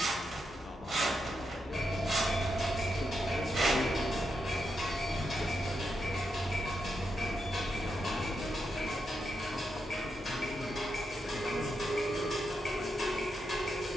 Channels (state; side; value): normal; both; correlation 0.84